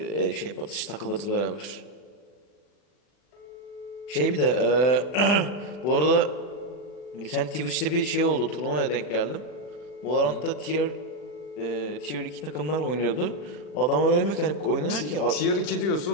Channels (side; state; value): right; late; 40 ms